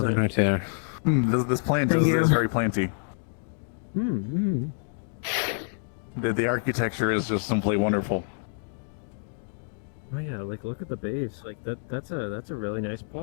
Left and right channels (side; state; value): right; silent; digital silence